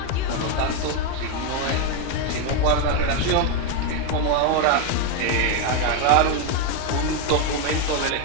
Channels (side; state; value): both; different; correlation 0.02